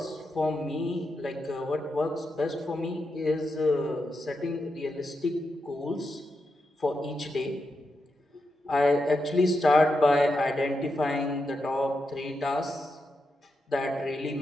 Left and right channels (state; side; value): normal; both; correlation 0.86